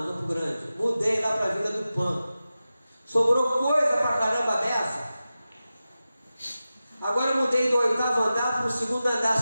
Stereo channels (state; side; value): inverted; both; correlation -0.94